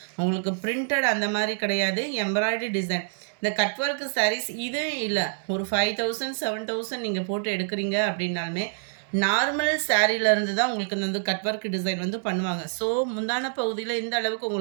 உங்களுக்கு பிரிண்டட் அந்த மாதிரி கிடையாது, எம்ப்ராய்டரி டிசைன். இந்த கட் ஒர்க் சாரீஸ் இது இல்லை, ஒரு 5000 7000 நீங்கள் போட்டு எடுக்கிறீங்க அப்படின்னாலுமே நார்மல் சாரீலேருந்து தான் உங்களுக்கு இந்த கட் ஒர்க் டிசைன் வந்து பண்ணுவாங்க. ஸோ முந்தான பகுதியில் இந்த அளவுக்கு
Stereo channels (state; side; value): silent; left; digital silence